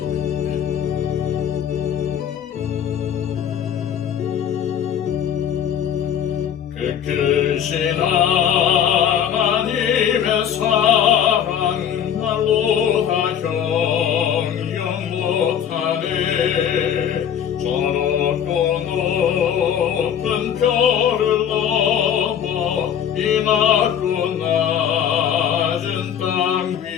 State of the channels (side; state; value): right; quieter; 8.9 dB